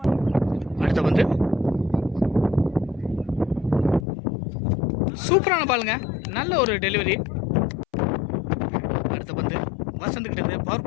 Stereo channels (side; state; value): right; drops out; at 4.0 s